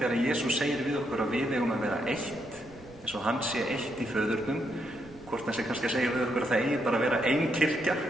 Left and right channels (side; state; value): right; noise; rumble, 22 dB below the sound